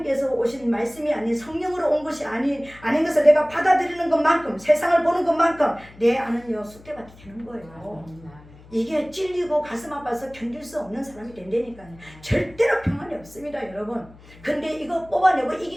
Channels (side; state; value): left; noise; hum, 22 dB below the sound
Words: 오신 말씀이 아닌 성령으로 온 것이 아닌 것을 내가 받아들이는 것만큼, 세상을 보는 것만큼 내 안은요 쑥대밭이 되는 거예요. 이게 찔리고 가슴 아파서 견딜 수 없는 사람이 된다니까요. 절대로 평안이 없습니다, 여러분. 근데 이거 뽑아내고